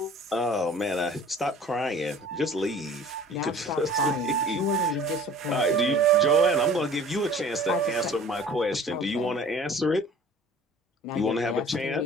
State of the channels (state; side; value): normal; both; correlation 0.47